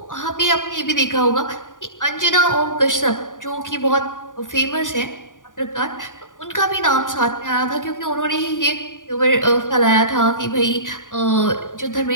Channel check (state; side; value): late; right; 0.88 ms